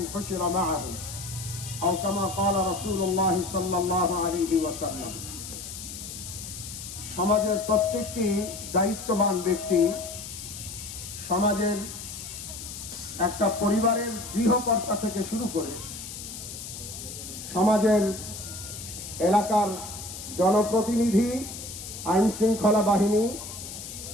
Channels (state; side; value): noise; left; hiss, 10 dB below the sound